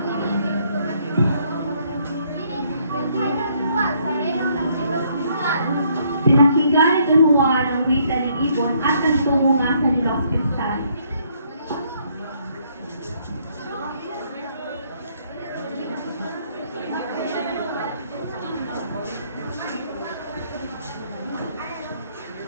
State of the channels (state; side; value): inverted; both; correlation -0.68